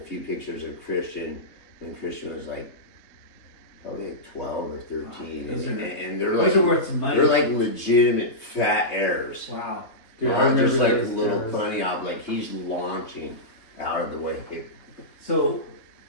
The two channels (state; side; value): late; right; 3.5 ms